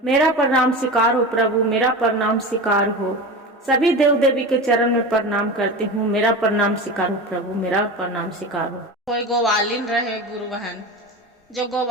मेरा प्रणाम स्वीकार हो प्रभु, मेरा प्रणाम स्वीकार हो। सभी देव देवी के चरण में प्रणाम करती हूँ, मेरा प्रणाम स्वीकार हो प्रभु, मेरा प्रणाम स्वीकार हो। कोई गोवालिन रहे गुरु बहन, जो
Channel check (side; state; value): both; normal; correlation 0.28